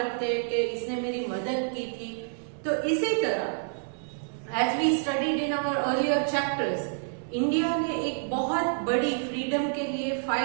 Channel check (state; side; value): silent; left; 59 dB below the other